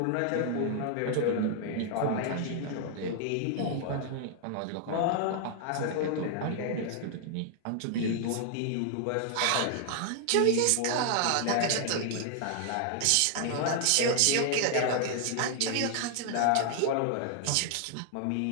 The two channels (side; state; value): both; different; correlation 0.00